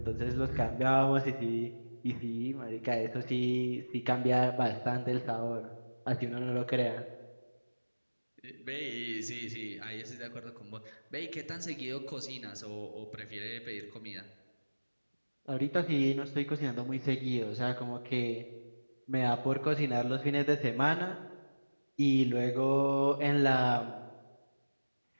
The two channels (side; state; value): both; inverted; correlation -1.00